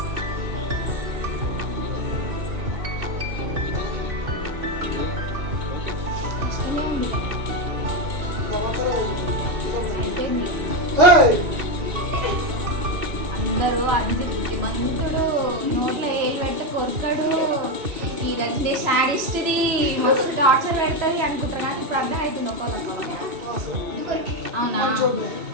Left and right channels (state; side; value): late; left; 3.0 ms